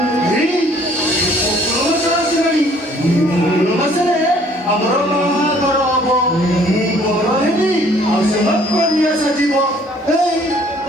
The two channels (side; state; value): both; normal; correlation 0.58